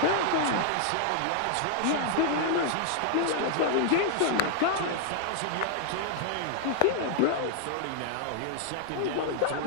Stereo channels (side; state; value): both; different; correlation -0.01